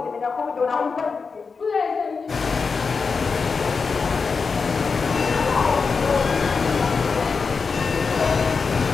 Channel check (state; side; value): quieter; right; 5.0 dB